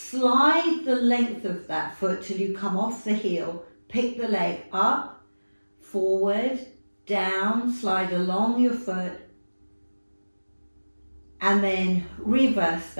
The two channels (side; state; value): both; inverted; correlation -1.00